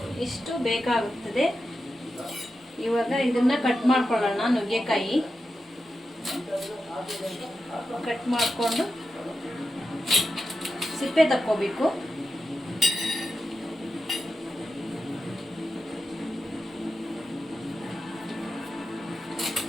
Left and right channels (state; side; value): normal; both; correlation 0.90